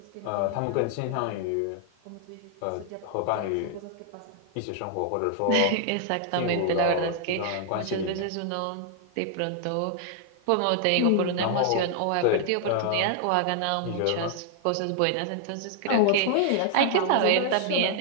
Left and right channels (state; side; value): different; both; correlation 0.00